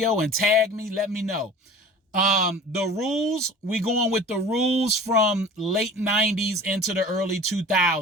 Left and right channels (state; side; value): normal; both; correlation 0.41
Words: and tag me, let me know. The rules, we going with the rules from late 90s into the early